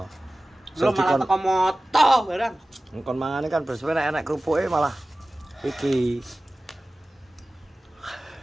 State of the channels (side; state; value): both; normal; correlation 0.97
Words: Lo malah teko moto barang. Engkon mangane kan bersuwe nek enak kerupuke malah iki.